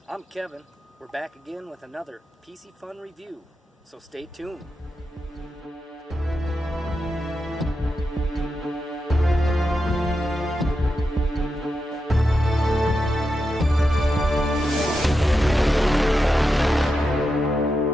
I'm Kevin. We're back again with another Piscifun review, so stay tuned.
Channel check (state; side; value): normal; both; correlation 0.88